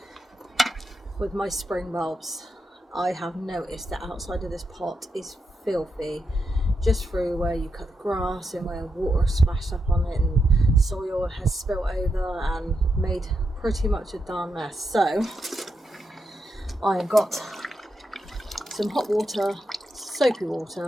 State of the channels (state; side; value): normal; both; correlation 0.84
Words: with my spring bulbs. I have noticed that outside of this pot is filthy, just through where you cut the grass and where water splashed up on it and soil has spilt over and made pretty much a darn mess. So I have got some hot water, soapy